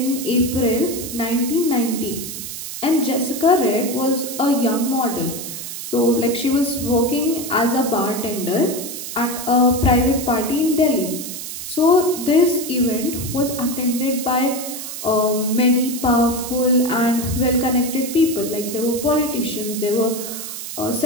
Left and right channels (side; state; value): right; noise; hiss, 8 dB below the sound